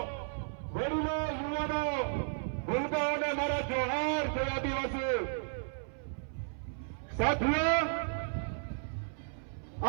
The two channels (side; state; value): left; silent; 55 dB below the other